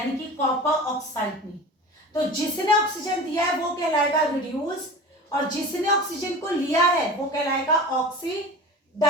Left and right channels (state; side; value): normal; both; correlation 0.35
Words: कि कॉपर ऑक्साइड ने। तो जिसने ऑक्सीजन दिया है वो कहलाएगा रिड्यूस, और जिसने ऑक्सीजन को लिया है वो कहलाएगा